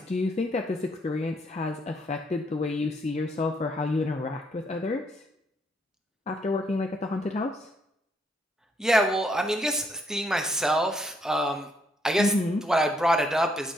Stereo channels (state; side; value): normal; both; correlation 0.72